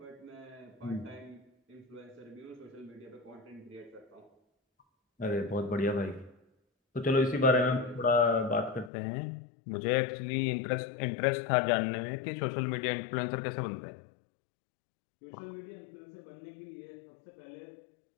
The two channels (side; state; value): right; drops out; at 8.9 s